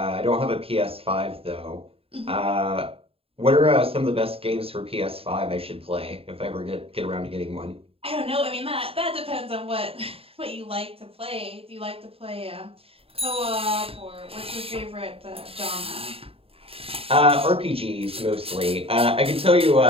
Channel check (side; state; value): left; late; 0.27 ms